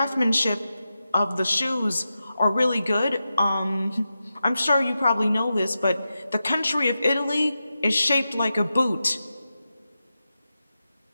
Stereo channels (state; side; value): inverted; both; correlation -0.91